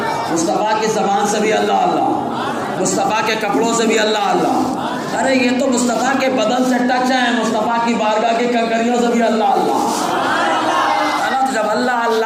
مصطفیٰ کی زبان سے بھی اللہ اللہ، مصطفیٰ کے کپڑوں سے بھی اللہ اللہ۔ ارے یہ تو مصطفیٰ کے بدن سے ٹچ ہے، مصطفیٰ کی بارگاہ کی کنکریوں سے بھی اللہ اللہ، ہے نا؟ تو جب اللہ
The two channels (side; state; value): both; identical; correlation 1.00